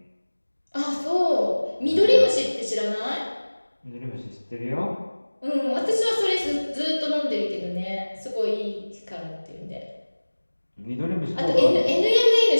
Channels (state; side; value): inverted; both; correlation -1.00